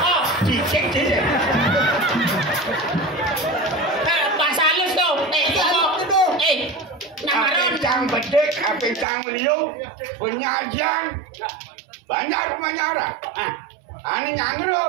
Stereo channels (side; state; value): left; drops out; at 9.1 s